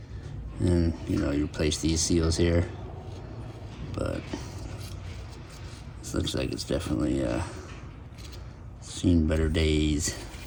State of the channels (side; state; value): both; identical; correlation 1.00